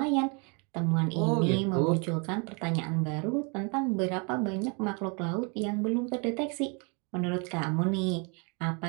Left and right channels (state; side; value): quieter; left; 33.3 dB